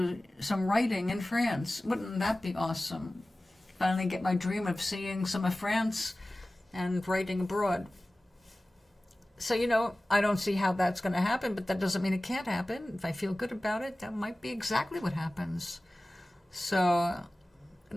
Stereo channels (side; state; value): both; normal; correlation 0.97